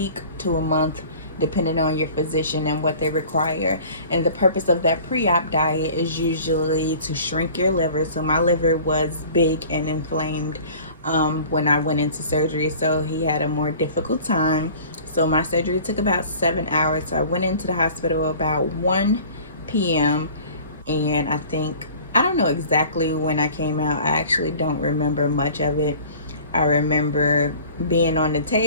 to a month, depending on your physician and what they require. And the purpose of that pre-op diet is usually to shrink your liver. So my liver was big and inflamed when I went into surgery, so he had a more difficult time. So my surgery took about 7 hours. So I went into the hospital about 1 p.m. And I don't know exactly when I came out. I actually don't remember much of it. I remember being on the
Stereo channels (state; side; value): inverted; both; correlation -0.45